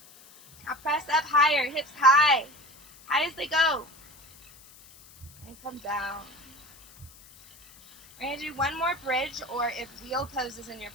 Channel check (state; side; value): noise; left; hiss, 23 dB below the sound